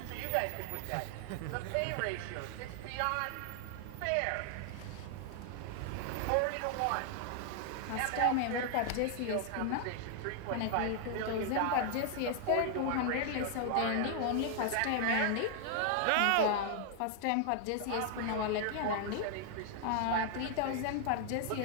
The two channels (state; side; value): different; both; correlation 0.00